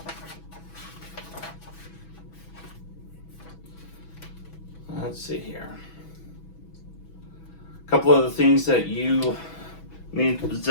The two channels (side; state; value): right; late; 6.1 ms